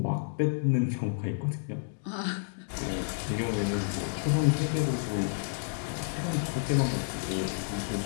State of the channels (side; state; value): right; silent; digital silence